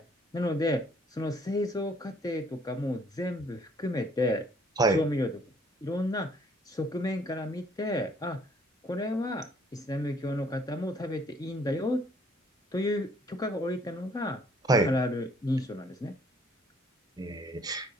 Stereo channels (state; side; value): normal; both; correlation 0.62